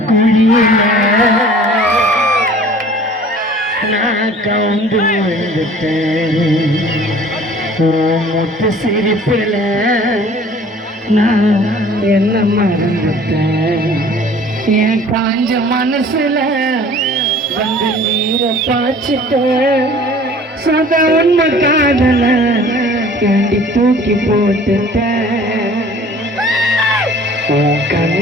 நான் கவுந்து வந்துட்டேன். முத்து சிரிப்புல நான் என்ன மறந்துட்டேன். என் காஞ்ச மனசுல வந்து நீரை பாய்ச்சிட்டேன். சதா உண்மை காதல ஏண்டி தூக்கி போட்டுட்டேன். உன்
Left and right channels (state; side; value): normal; both; correlation 0.49